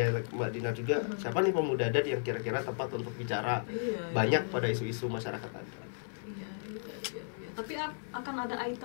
Mbak Dina juga, siapa nih pemuda adat yang kira-kira tepat untuk bicara banyak pada isu-isu masyarakat adat. Iya. Tapi akan ada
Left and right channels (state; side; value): silent; right; 55 dB below the other